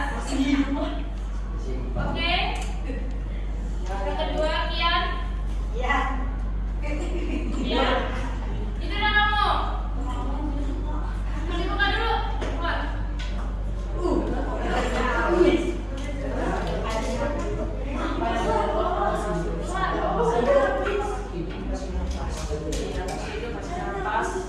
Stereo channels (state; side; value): identical; both; correlation 1.00